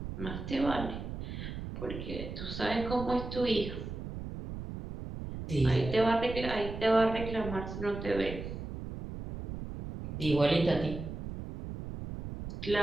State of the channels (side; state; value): right; noise; rumble, 8 dB below the sound